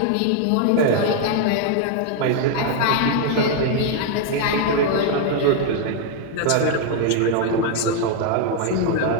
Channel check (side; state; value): both; different; correlation 0.00